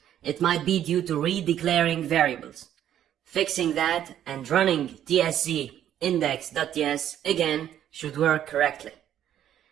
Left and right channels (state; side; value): quieter; left; 10.9 dB